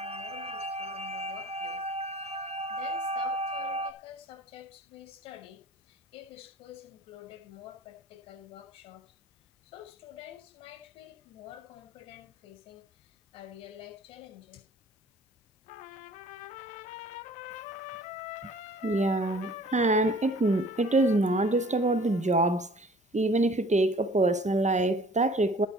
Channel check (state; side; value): normal; both; correlation 0.50